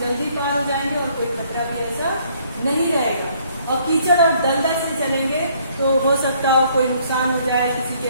पार हो जाएंगे और कोई खतरा भी ऐसा नहीं रहेगा। और कीचड़ और दलदल से चलेंगे तो हो सकता हो कोई नुकसान हो जाए, किसी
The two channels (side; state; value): both; inverted; correlation -0.64